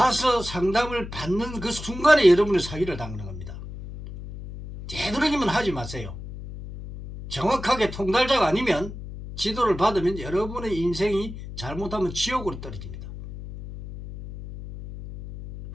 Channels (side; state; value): left; noise; hum, 11 dB below the sound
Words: 상담을 받는 그 순간에 여러분의 사기를 당하는 겁니다. 되도록이면 하지 마세요. 정확하게 통달자가 아니면 지도를 받으면 여러분의 인생이 잘못하면 지옥으로 떨어집니다.